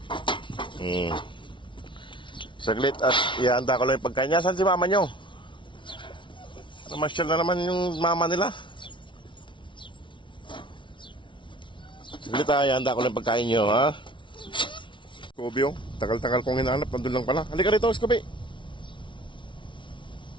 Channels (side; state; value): right; late; 0.24 ms